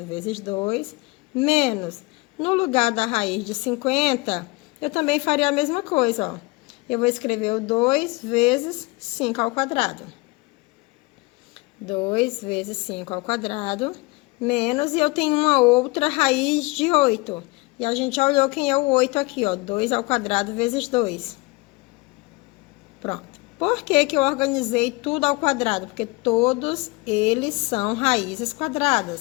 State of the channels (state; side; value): quieter; right; 24.8 dB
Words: vezes 2, menos, no lugar da raiz de 50, eu também faria a mesma coisa, ó. Eu vou escrever o 2 vezes 5 ao quadrado. 2 vezes 5 ao quadrado, menos, e eu tenho uma outra raiz de 8. E a gente já olhou quem é o 8 aqui, ó, 2 ao quadrado vezes 2. Pronto. Por que que eu organizei tudo ao quadrado? Porque todos eles são raízes